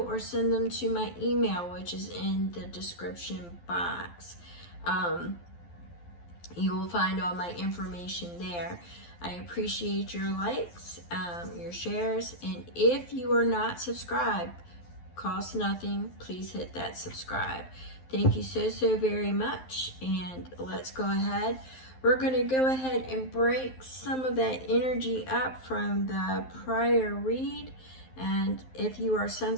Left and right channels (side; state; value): right; late; 12 ms